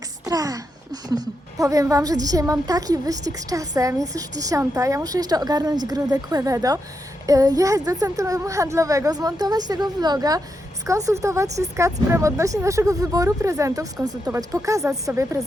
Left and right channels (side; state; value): both; normal; correlation 0.84